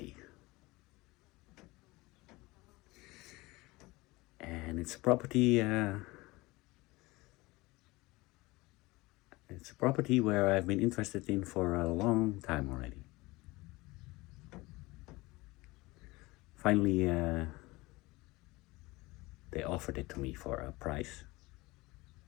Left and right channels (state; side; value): quieter; right; 21.8 dB